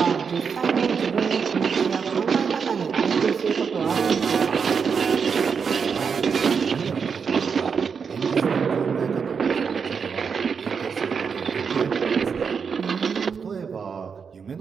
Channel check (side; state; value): left; quieter; 6.1 dB